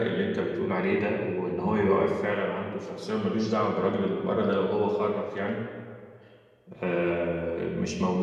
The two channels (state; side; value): identical; both; correlation 1.00